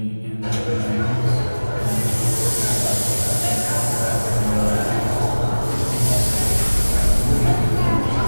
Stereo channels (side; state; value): both; inverted; correlation -1.00